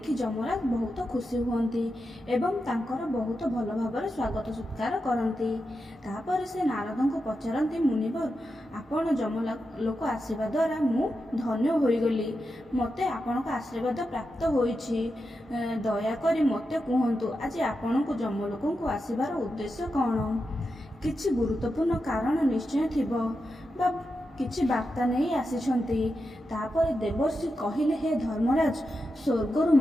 ଯମରାଜ ବହୁତ ଖୁସି ହୁଅନ୍ତି ଏବଂ ତାଙ୍କର ବହୁତ ଭଲ ଭାବରେ ସ୍ୱାଗତ ସତ୍କାର କରନ୍ତି। ତାପରେ ସେ ନାରଦଙ୍କୁ ପଚାରନ୍ତି, ମୁନିବର, ଆପଣ ଯମଲୋକ ଆସିବା ଦ୍ୱାରା ମୁଁ ଧନ୍ୟ ହୋଇଗଲି। ମୋତେ ଆପଣଙ୍କ ଆଶୀର୍ବାଦ ପ୍ରାପ୍ତ ହୋଇଛି। ଦୟାକରି ମୋତେ କୁହନ୍ତୁ, ଆଜି ଆପଣଙ୍କୁ ଯମଲୋକଙ୍କୁ ଆସିବାର ଉଦ୍ଦେଶ୍ୟ କ'ଣ? କିଛି ଗୁରୁତ୍ୱପୂର୍ଣ୍ଣ କାରଣ ନିଶ୍ଚୟ ଥିବ ବା କିଛି ବାର୍ତ୍ତା ନେଇ ଆସିଛନ୍ତି। ତାପରେ ଦେବର୍ଷି କହିଲେ, ହେ ଧର୍ମରାଜ, ସ୍ୱର୍ଗରୁ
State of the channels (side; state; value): both; normal; correlation 0.88